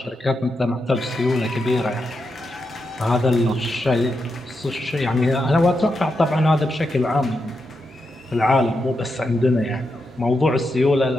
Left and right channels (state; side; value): normal; both; correlation 0.85